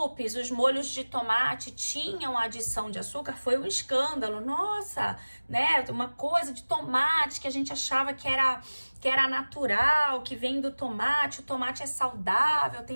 os molhos de tomate tinham adição de açúcar, foi um escândalo. Nossa, né? Uma coisa de tomate que a gente achava que era natural, que vem do tomate. O tomate é saudável,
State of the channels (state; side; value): inverted; both; correlation -1.00